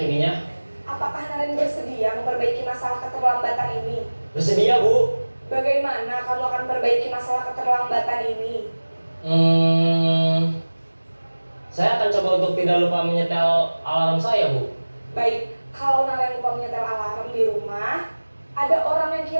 Apakah Naren bersedia memperbaiki masalah keterlambatan ini? Bersedia Bu. Bagaimana kamu akan perbaiki masalah keterlambatan ini? Saya akan coba untuk tidak lupa menyetel alarm saya Bu. Baik, kalau Naren lupa menyetel alarm di rumah, ada orang yang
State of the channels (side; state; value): both; inverted; correlation -1.00